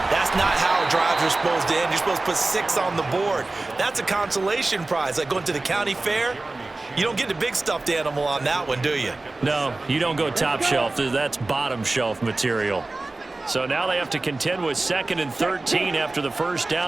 that's not how drives are supposed to end. You're supposed to put 6 on the board. That's a consolation prize, like going to the county fair. You don't get the big stuffed animal on that one, do you? No, you don't go top shelf. That's bottom shelf material. So now they have to contend with 2nd and 13 after the first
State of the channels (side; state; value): left; quieter; 3.1 dB